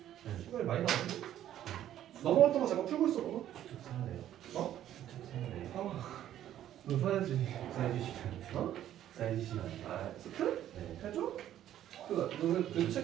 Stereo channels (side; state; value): left; quieter; 11.7 dB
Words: 시간이 많이 나왔네. 넘어갔던 거 잠깐 풀고 있어 봐봐. 수축 사네요. 어? 수축 사네요. 너 사야지. 사이즈 시간. 어? 사이즈 시간. 아 스크? 네. 해줘? 너는